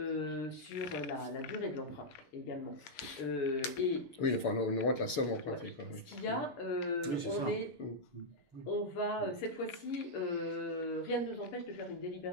sur la durée de l'emprunt également. Oui, enfin, on augmente la somme empruntée. Quoi, oui. Ce qu'il y a, on va, cette fois-ci, rien ne nous empêche de faire une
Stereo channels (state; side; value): late; right; 6.7 ms